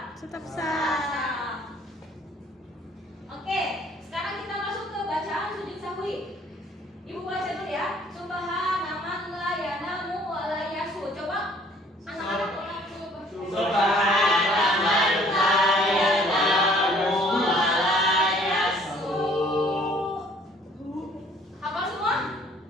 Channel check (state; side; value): normal; both; correlation 0.58